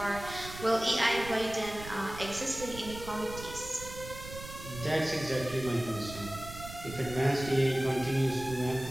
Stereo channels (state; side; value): noise; right; rumble, 12 dB below the sound